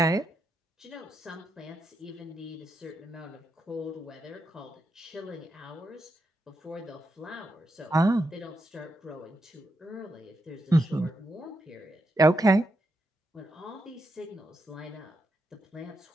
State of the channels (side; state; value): both; normal; correlation 0.83